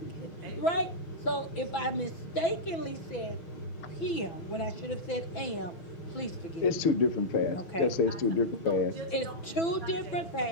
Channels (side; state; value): right; late; 6.0 ms